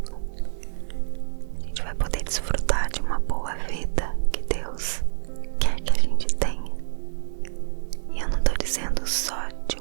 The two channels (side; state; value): left; silent; digital silence